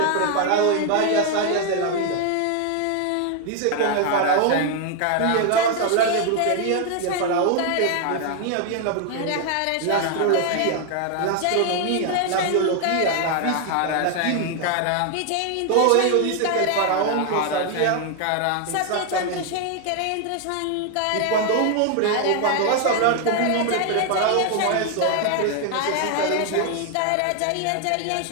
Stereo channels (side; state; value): both; different; correlation 0.00